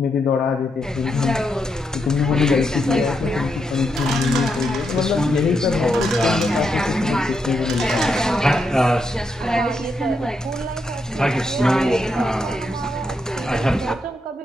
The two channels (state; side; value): normal; both; correlation 0.82